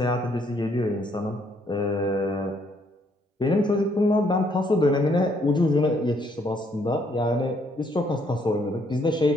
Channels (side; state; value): both; normal; correlation 0.69